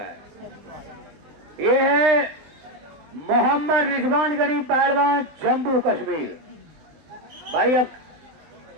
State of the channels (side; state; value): left; late; 20 ms